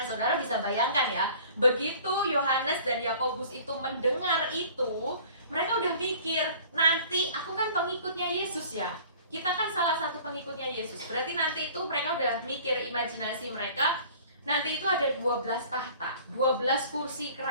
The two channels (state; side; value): inverted; both; correlation -0.48